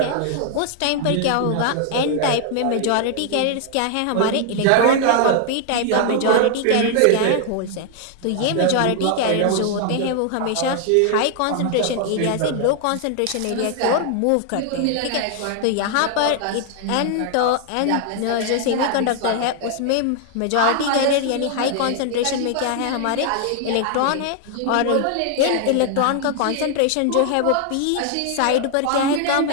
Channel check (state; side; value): different; both; correlation 0.00